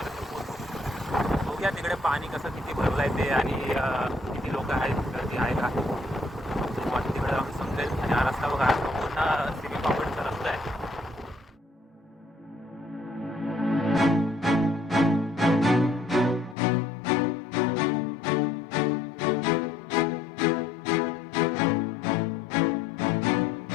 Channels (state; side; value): drops out; right; at 16.6 s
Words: पोहोचू. बघूया तिकडे पाणी कसं किती भरलं आहे ते आणि किती लोक आहेत, गर्दी आहे का तिकडे आम्ही समजेल. आणि हा रस्ता बघा, पूर्ण सिमी कॉम्प्लेक्सचा रस्ता आहे.